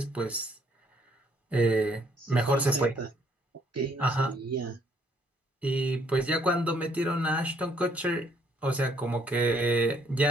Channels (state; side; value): normal; both; correlation 0.66